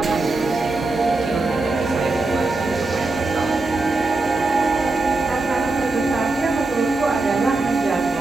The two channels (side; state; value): left; quieter; 3.2 dB